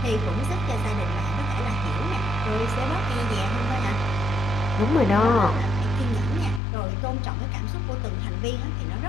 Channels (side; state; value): right; drops out; at 6.6 s